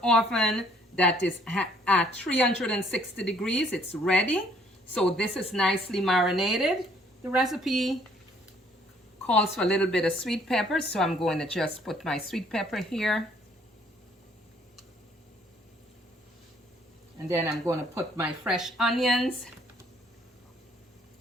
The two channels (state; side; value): normal; both; correlation 0.63